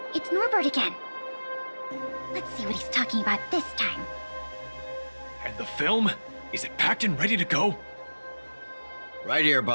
it's Norbert again. Let's see what he's talking about this time. And the film? Is it packed and ready to go? Right here,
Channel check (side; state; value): both; inverted; correlation -1.00